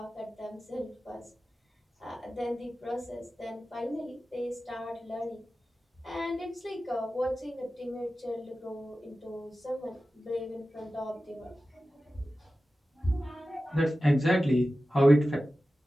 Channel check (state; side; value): normal; both; correlation 0.94